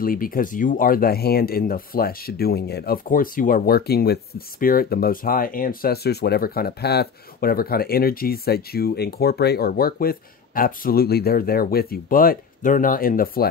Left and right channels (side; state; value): right; quieter; 6.2 dB